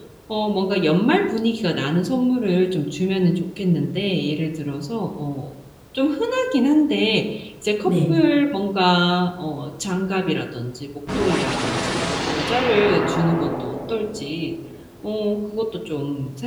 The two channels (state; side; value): identical; both; correlation 1.00